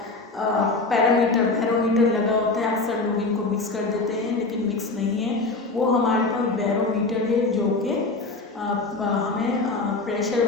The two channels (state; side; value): quieter; right; 3.5 dB